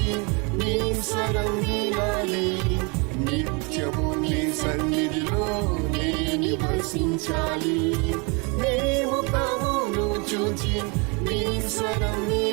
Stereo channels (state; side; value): quieter; left; 31.3 dB